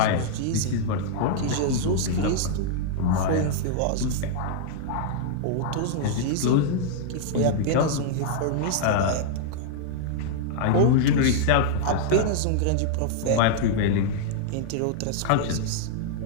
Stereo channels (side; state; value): both; different; correlation -0.01